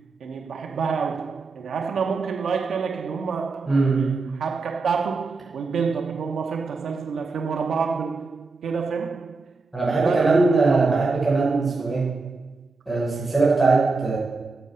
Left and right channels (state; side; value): quieter; left; 3.9 dB